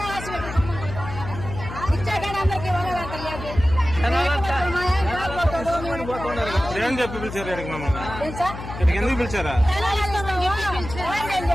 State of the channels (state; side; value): noise; left; hum, 10 dB below the sound